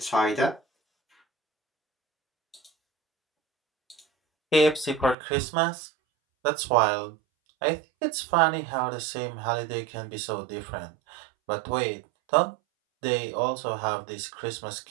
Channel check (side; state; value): left; drops out; at 5.2 s